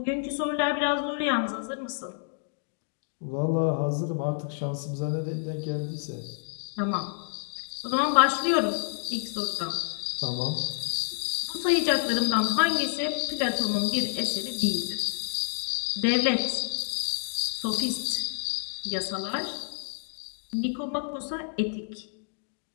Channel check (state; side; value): silent; right; digital silence